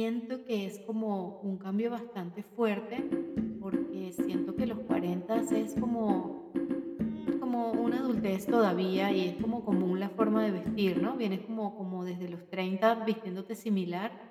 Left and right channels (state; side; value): identical; both; correlation 1.00